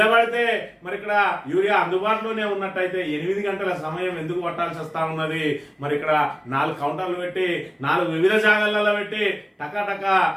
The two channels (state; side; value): identical; both; correlation 1.00